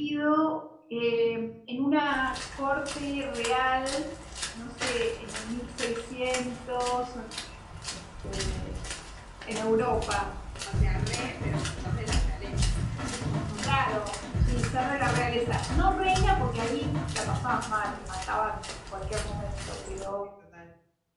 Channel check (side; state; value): both; identical; correlation 1.00